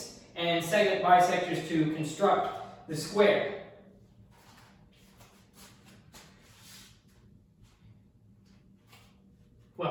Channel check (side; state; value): both; identical; correlation 1.00